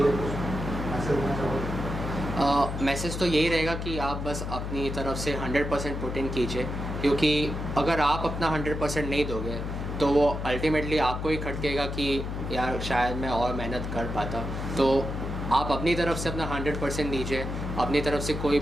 लिए कुछ मैसेज देना चाहोगे? मैसेज तो यही रहेगा कि आप बस अपनी तरफ से 100% पुट इन कीजिए, क्योंकि अगर आप अपना 100% नहीं दोगे तो वो अल्टीमेटली आपको ही खटकेगा कि यार शायद मैं और मेहनत कर पाता। तो आप अपनी तरफ से अपना 100% दीजिए, अपनी तरफ से कोई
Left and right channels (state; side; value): noise; left; hum, 4 dB below the sound